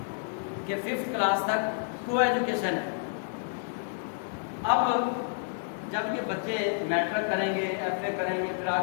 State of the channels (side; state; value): right; silent; digital silence